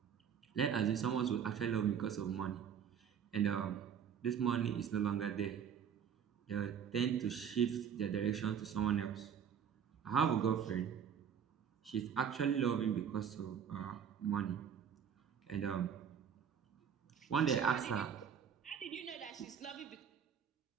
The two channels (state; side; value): quieter; left; 7.9 dB